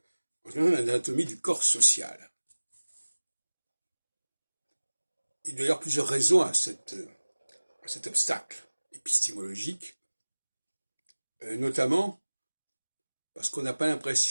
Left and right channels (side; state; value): both; inverted; correlation -1.00